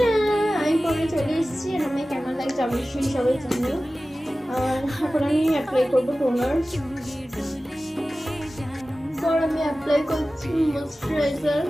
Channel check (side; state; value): both; normal; correlation 0.96